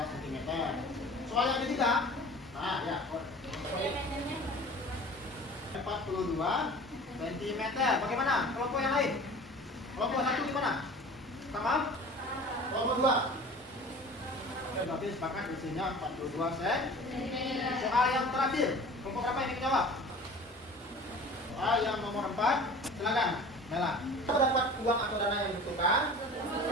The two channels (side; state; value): both; normal; correlation 0.42